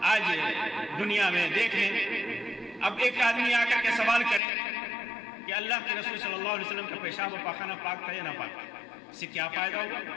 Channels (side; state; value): right; drops out; at 4.4 s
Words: آج دنیا میں دیکھ لیں، اب ایک آدمی آ کر کے سوال کرے کہ اللہ کے رسول صلی اللہ علیہ وسلم کا پیشاب و پاخانہ پاک تھا یا نہ پاک، اس سے کیا فائدہ ہوگا؟